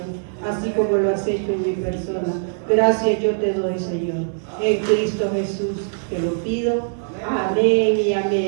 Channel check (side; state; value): left; silent; digital silence